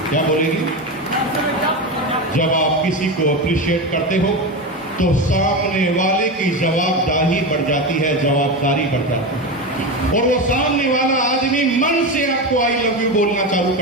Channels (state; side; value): normal; both; correlation 0.19